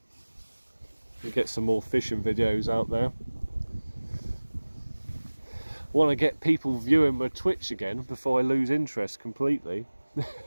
and get some more fishing videos out there. I want to get people viewing my Twitch again before I lose interest completely.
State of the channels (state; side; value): inverted; both; correlation -1.00